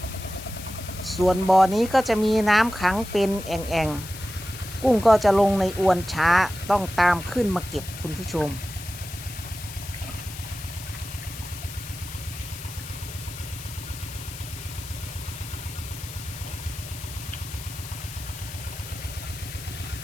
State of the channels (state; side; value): noise; left; hiss, 12 dB below the sound